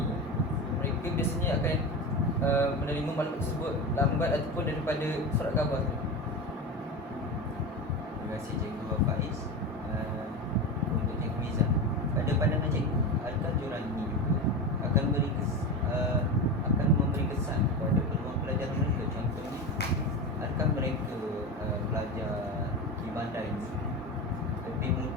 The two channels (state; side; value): normal; both; correlation 0.23